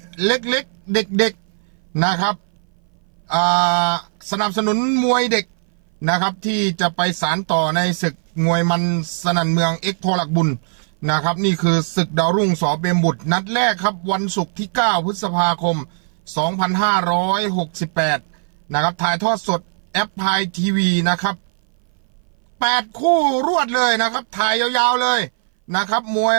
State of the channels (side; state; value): left; silent; 58 dB below the other